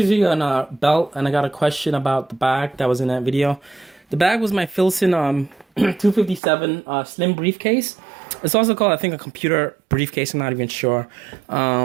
on a belt, and I got a question about the bag that was in that video. The bag was my Filson 257 slim briefcase. It's also called, I think, a computer briefcase. I'm not even sure.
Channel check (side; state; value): left; drops out; at 6.4 s